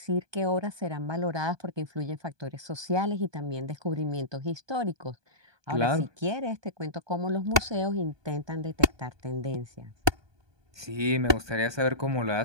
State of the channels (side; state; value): left; late; 1.2 ms